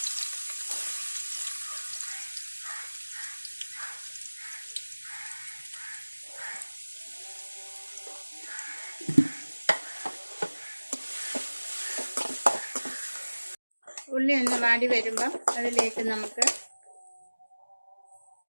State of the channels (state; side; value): inverted; both; correlation -1.00